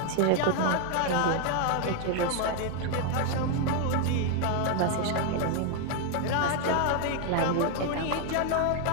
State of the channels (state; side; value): different; both; correlation 0.00